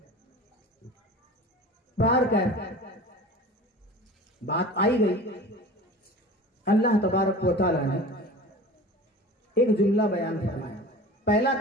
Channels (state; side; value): normal; both; correlation 0.38